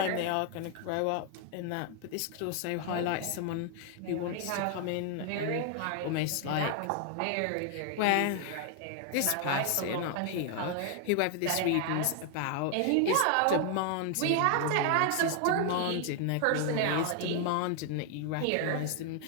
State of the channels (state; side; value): different; both; correlation 0.00